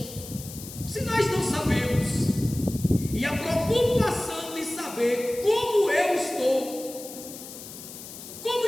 Se nós não sabemos, e a preocupação de saber como eu estou, como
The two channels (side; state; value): left; noise; hiss, 13 dB below the sound